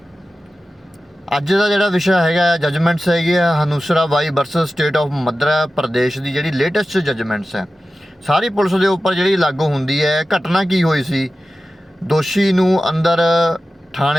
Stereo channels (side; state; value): both; normal; correlation 0.94